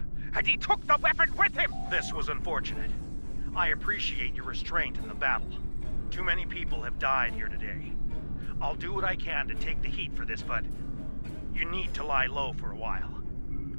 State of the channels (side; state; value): both; inverted; correlation -1.00